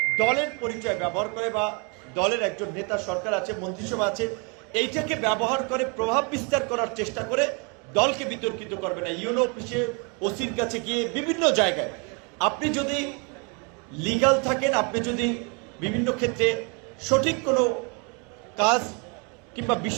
দলের পরিচয় ব্যবহার করে বা দলের একজন নেতা সরকার আছে, মন্ত্রিসভা আছে, এইটাকে ব্যবহার করে প্রভাব বিস্তার করার চেষ্টা করে দলকে বিতর্কিত করবে না। ইউনো অফিসে, ওসির কাছে গিয়ে বিভিন্ন জায়গায় আপনি যদি লিগ্যাল থাকেন, আপনি যদি বিভিন্ন ক্ষেত্রে সঠিক কোনো কাজ কিংবা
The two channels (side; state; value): left; quieter; 33.7 dB